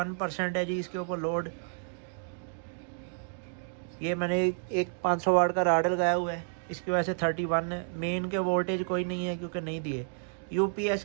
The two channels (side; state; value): left; silent; digital silence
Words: है जी इसके ऊपर लोड। ये मैंने एक 500 वाट का राड लगाया हुआ है, इसकी वजह से 31 है। मेन के वोल्टेज कोई नहीं है क्योंकि नहीं दिए।